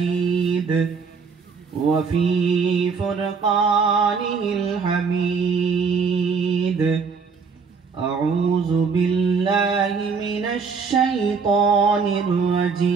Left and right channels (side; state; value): left; quieter; 5.3 dB